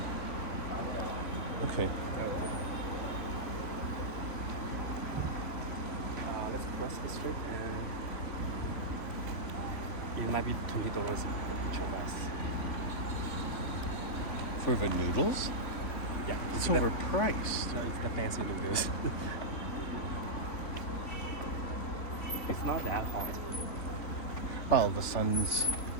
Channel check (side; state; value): right; late; 3.5 ms